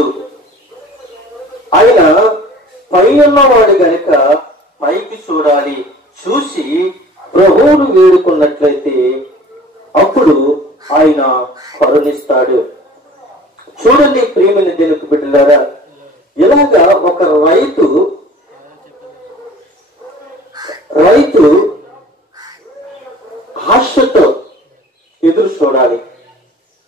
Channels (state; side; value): normal; both; correlation 0.46